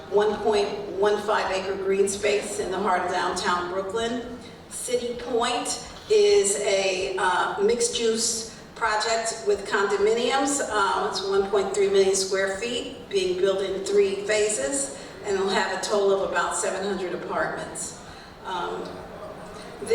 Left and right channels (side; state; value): both; identical; correlation 1.00